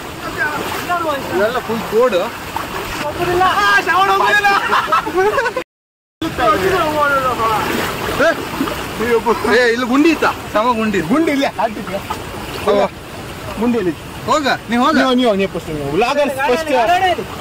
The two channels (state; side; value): identical; both; correlation 1.00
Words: ಇವೆಲ್ಲ ಫುಲ್ ಕೋಡ್ ಇಲ್ಲಿ ಗುಂಡಿ ಇತ್ತ ಸಮ ಗುಂಡಿ ಗುಂಡಿ ಇಲ್ಲ ಗುಂಡಿ ಇಲ್ಲಿ ಹೋಗ ನೀವು ಹೋಗ